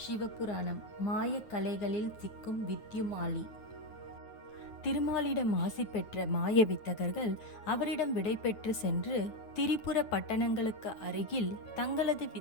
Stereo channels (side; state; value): right; late; 9.3 ms